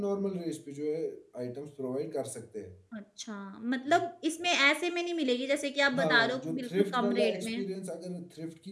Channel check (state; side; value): identical; both; correlation 1.00